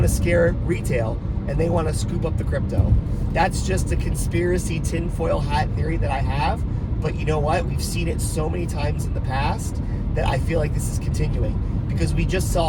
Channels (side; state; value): both; identical; correlation 1.00